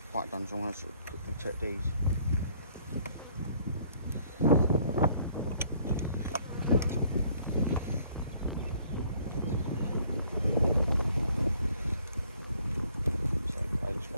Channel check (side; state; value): both; inverted; correlation -0.61